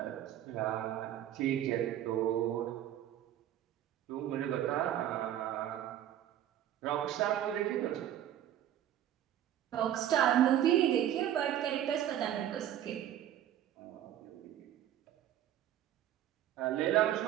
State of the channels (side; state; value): left; quieter; 11.5 dB